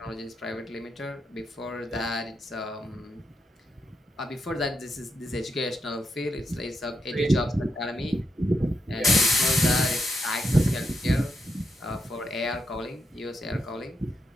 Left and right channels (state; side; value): normal; both; correlation 0.82